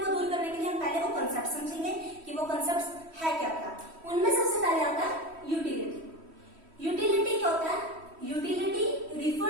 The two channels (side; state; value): left; late; 3.1 ms